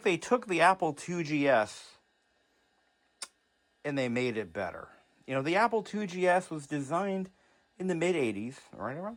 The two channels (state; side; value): identical; both; correlation 1.00